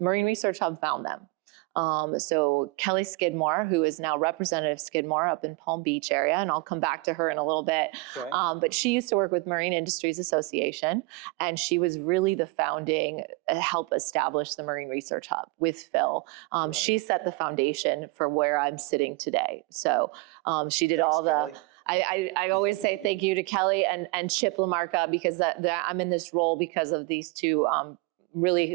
Research Hub found them. So Kelly Skidmore, who is now Representative Skidmore up in Palm Beach area, and I'll come back to her in a little bit. Okay. But she used to work with Marine Industries Association, and she was really the founding, help establish the Marine Research Hub with Phil. She set the foundation for where I'm sitting today. So she did all the... Kelly. I always say thank you to Kelly and Chip LaMarca, because I'm in this role because of these two really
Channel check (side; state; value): left; quieter; 25.1 dB